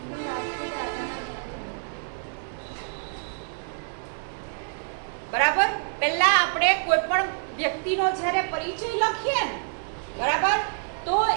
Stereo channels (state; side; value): silent; left; 60 dB below the other